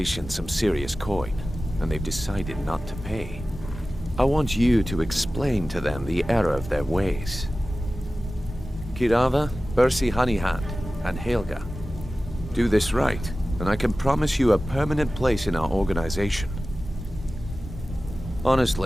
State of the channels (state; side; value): normal; both; correlation 0.96